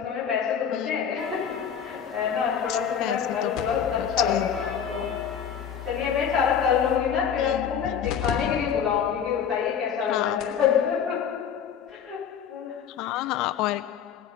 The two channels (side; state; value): right; quieter; 8.0 dB